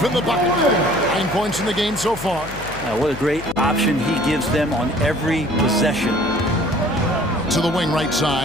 in the bucket. 9 points in the game so far. What a great option he gives them on every possession. To the wing right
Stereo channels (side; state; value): left; noise; hum, 13 dB below the sound